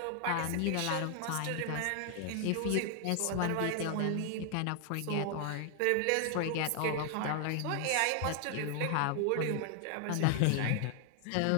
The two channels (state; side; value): different; both; correlation 0.00